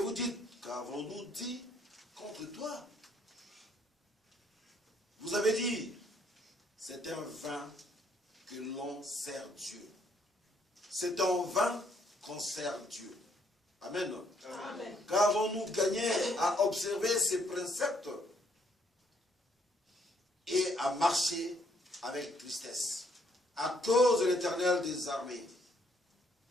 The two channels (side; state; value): both; normal; correlation 0.69